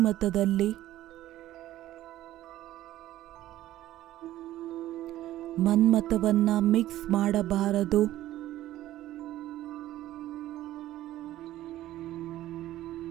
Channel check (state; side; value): quieter; left; 14.2 dB